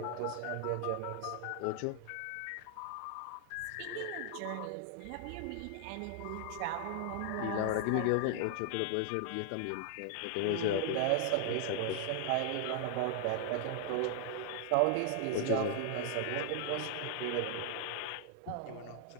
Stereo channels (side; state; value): both; different; correlation 0.00